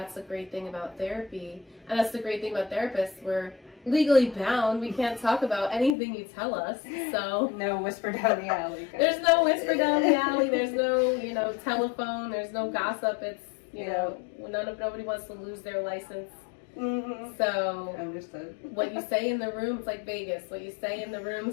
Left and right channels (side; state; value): right; drops out; at 6.0 s